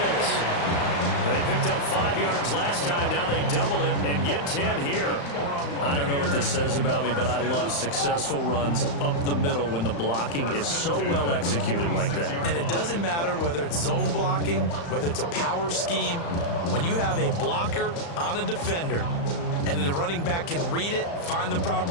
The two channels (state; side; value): late; right; 35 ms